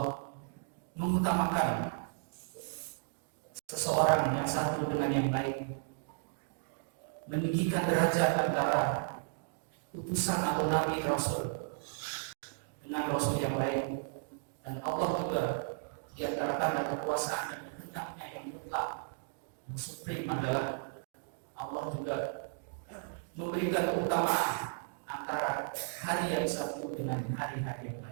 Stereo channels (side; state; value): left; silent; digital silence